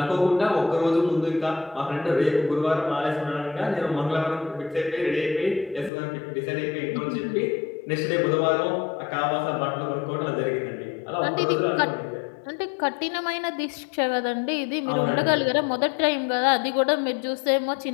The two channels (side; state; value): right; drops out; at 5.9 s